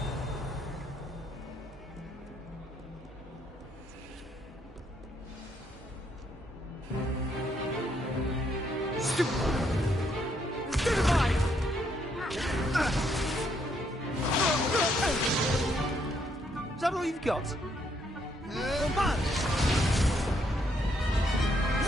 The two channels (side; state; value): both; normal; correlation 0.73